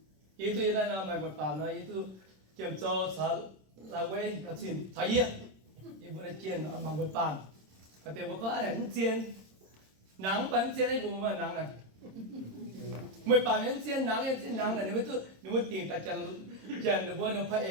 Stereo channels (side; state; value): left; late; 26 ms